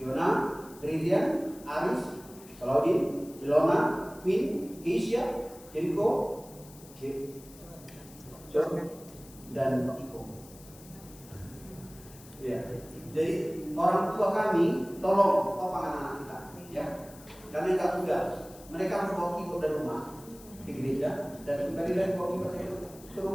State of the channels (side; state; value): left; noise; hiss, 21 dB below the sound